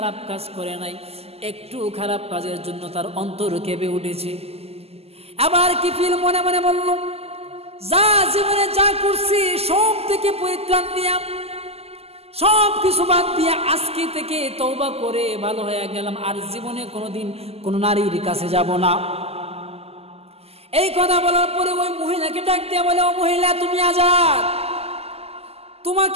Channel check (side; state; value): left; late; 0.29 ms